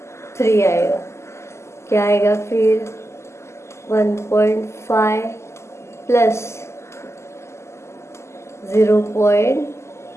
आएगा, क्या आएगा फिर 1.5 प्लस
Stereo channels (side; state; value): right; late; 0.13 ms